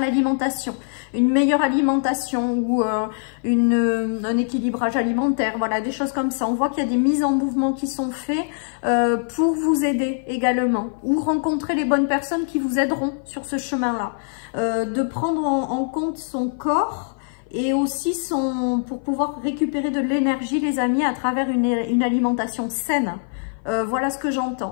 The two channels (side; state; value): right; silent; 57 dB below the other